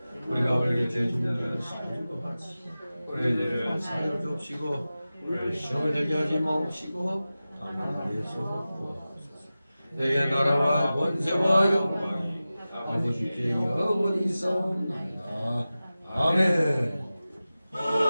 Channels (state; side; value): inverted; both; correlation -0.96